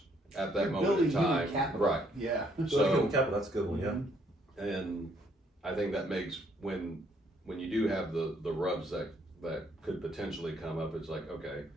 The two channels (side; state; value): both; normal; correlation 0.68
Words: at that moment in time. Capital. Right. Yeah. So human capital, that's a good one, yeah. And I think that makes, when you do have the rubs that could potentially come up, it's like, okay,